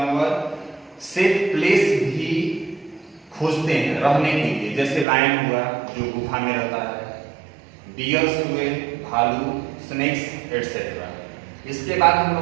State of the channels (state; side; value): drops out; left; at 5.1 s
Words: सेफ प्लेस भी खोजते हैं रहने के लिए। जैसे लायन हुआ जो गुफा में रहता है, डियर्स हुए, भालू, स्नेक्स एटसेट्रा। इसके बाद हम